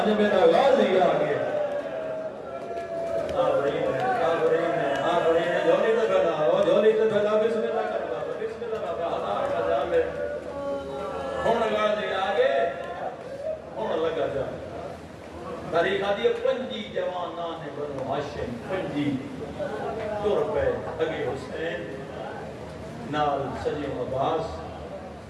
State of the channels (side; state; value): both; identical; correlation 1.00